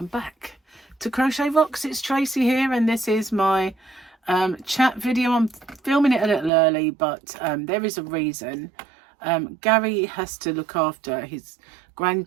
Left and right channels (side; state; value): left; drops out; at 6.5 s